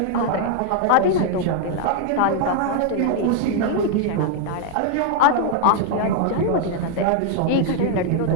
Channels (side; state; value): both; different; correlation 0.00